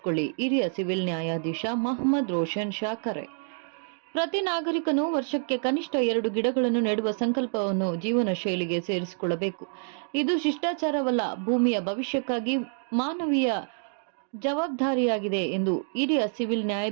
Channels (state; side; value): silent; left; 60 dB below the other